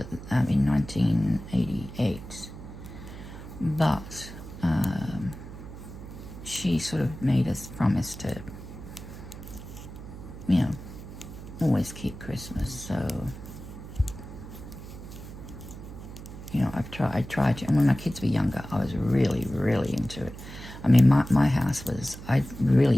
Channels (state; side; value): noise; right; hum, 13 dB below the sound